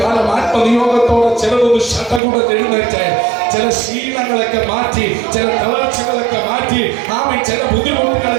ആത്മനിയോഗത്തോടെ ചിലതൊന്ന് ശടകുടഞ്ഞെഴുന്നേറ്റ് ചില ശീലങ്ങളൊക്കെ മാറ്റി, ചില തളർച്ചകളൊക്കെ മാറ്റി, ചില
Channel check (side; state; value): left; drops out; at 2.2 s